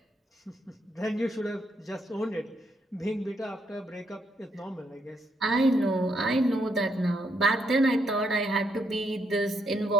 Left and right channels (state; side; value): normal; both; correlation 0.75